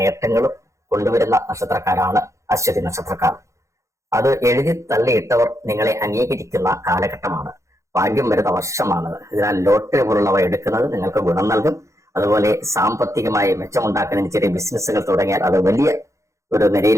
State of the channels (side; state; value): left; late; 0.15 ms